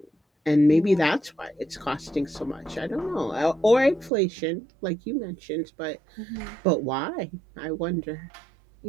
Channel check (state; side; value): drops out; left; at 4.1 s